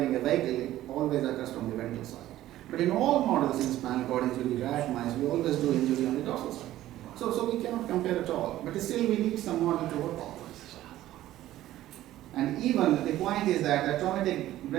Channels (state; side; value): quieter; left; 14.3 dB